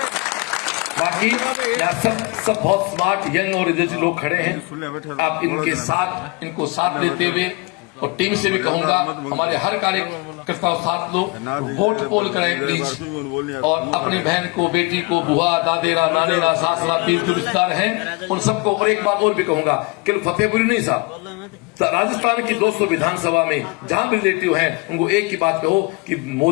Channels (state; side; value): quieter; right; 27.7 dB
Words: बाकी यहाँ सब बहुत स्मार्ट यंग और एनर्जी लोग खड़े हैं। आप इनके साथ, इनको साथ लेते हुए, और टीम से भी कहूंगा हमारे हर कार्यकर्ता साथ लो, वोट पोल करें प्लीज। और अपनी बहन को, बेटी को, बुआ, दादेरा, नानेरा, सासरा, पीर जो रिश्तेदार हैं उन सबको। और एक बात और भी कहूंगा, केवल फतेहपुरी नहीं साहब, राजस्थान की 200 विधानसभा में जहां भी रिलेटिव हैं उनको एक ही बात कहो कि